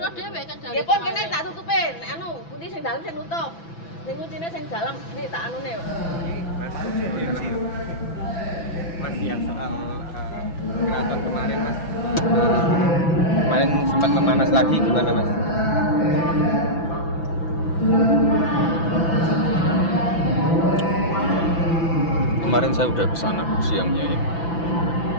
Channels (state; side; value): late; right; 6.0 ms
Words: dhewe kan dari. Ya pun kene tak tutupin. Anu, pundi sing dalem sing nutup. Sing kuncine sing dalem iki tak anune. Mas yang soal keraton kemarin Mas. Kemarin sempat memanas lagi gimana Mas? Kemarin saya udah kesana siangnya ya.